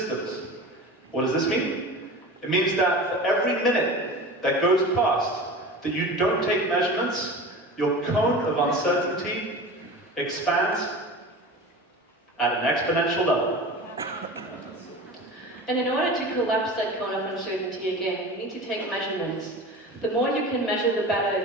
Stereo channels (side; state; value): both; normal; correlation 0.34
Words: What does this mean? It means that for every minute that goes past that you don't take measurements, your cone of uncertainty expands at an exponential level. And in order to collapse that cone of uncertainty again, you need to take measurements. The more you can measure, the